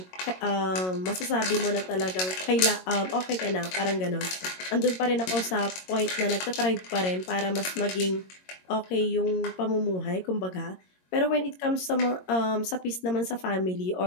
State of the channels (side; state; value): right; late; 22 ms